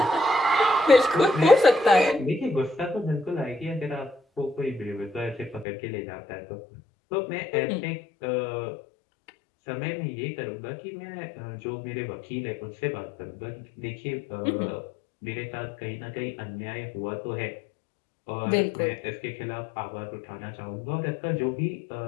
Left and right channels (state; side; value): drops out; right; at 5.7 s